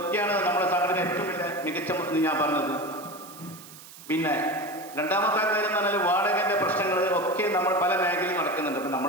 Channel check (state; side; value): noise; right; hiss, 18 dB below the sound